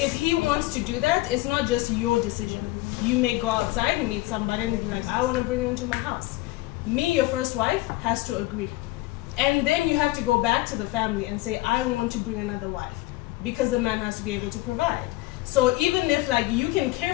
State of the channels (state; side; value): quieter; right; 19.3 dB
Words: he wants to do that, it's not just your decision. You may go outside and meet somebody and be like, I want to bring her into my house. Me, your first wife, has to agree. And then you have to go back to the family and say, I want to bring another wife. Because the man has to be able to provide. So even if like you can care